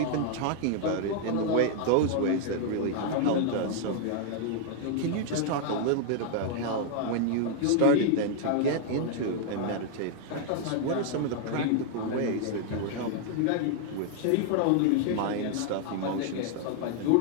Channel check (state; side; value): different; both; correlation 0.00